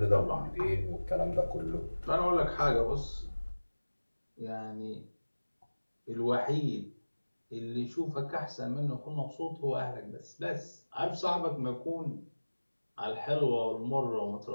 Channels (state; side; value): inverted; both; correlation -1.00